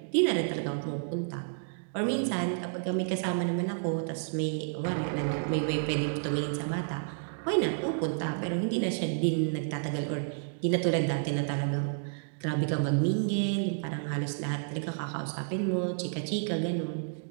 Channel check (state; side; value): silent; left; digital silence